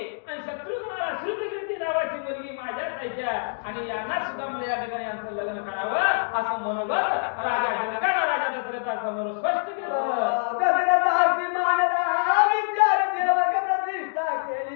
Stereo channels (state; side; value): silent; right; digital silence